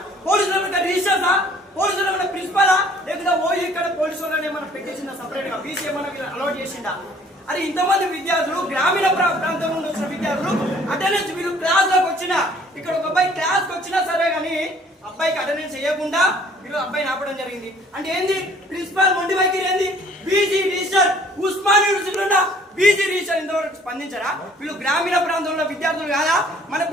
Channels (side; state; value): both; normal; correlation 0.56